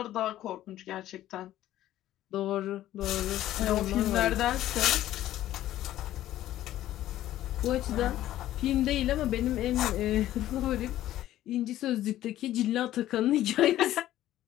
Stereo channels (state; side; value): quieter; right; 13.6 dB